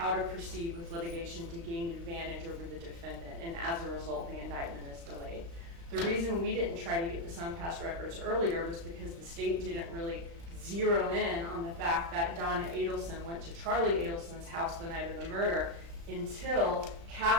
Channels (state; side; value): late; left; 35 ms